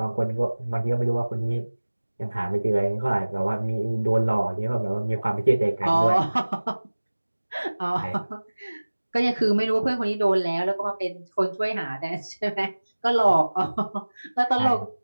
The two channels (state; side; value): inverted; both; correlation -1.00